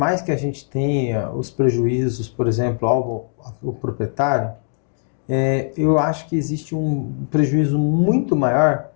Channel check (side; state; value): right; silent; digital silence